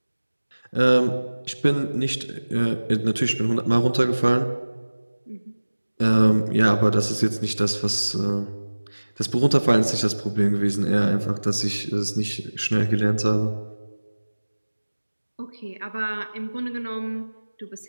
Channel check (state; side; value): inverted; both; correlation -1.00